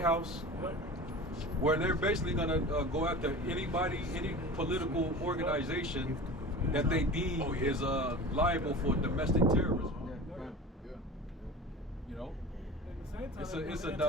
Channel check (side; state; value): both; normal; correlation 0.35